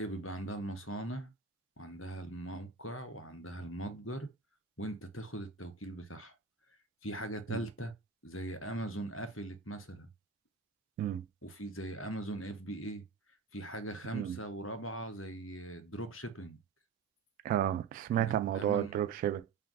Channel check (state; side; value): quieter; left; 5.4 dB